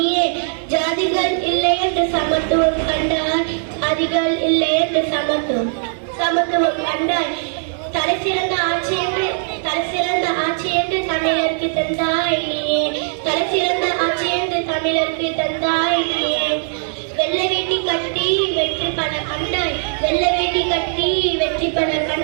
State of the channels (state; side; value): silent; left; digital silence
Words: ஜாதிகள் இல்லை என்று சமத்துவம் கண்டாய், ஜாதிகள் இல்லை என்று சமத்துவம் கண்டாய். தலை சிறந்த ஆட்சி என்று தமிழருக்கு தந்தாய் நீயே, தலை சிறந்த ஆட்சி என்று தமிழருக்கு தந்தாய் நீயே. வெள்ளை வேட்டி கட்டி வெற்றி பல கண்டாய், வெள்ளை வேட்டி கட்டி வெற்றி பல